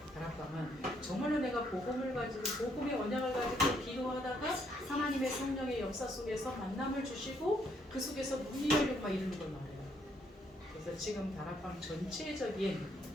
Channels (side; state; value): both; normal; correlation 0.71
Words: 다락방은 정말로 내가 복음을 가지고 복음의 언약을 가지고 기도하다가 하나님의 성령의 역사 속에서 만남을 주시고 그 속에서 문이 열리고 막 이러는 걸 말해요. 그래서 지금 다락방 전체적인